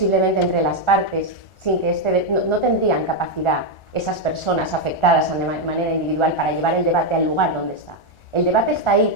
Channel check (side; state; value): right; late; 1.4 ms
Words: entre las partes, sin que no tendrían capacidad esas personas afectadas de manera individual para llevar el debate al lugar donde está. El debate está ahí